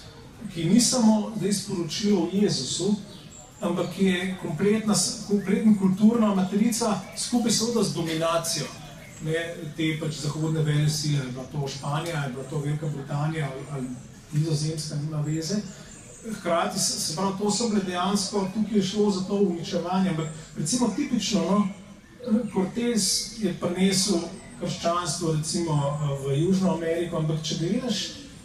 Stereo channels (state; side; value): identical; both; correlation 1.00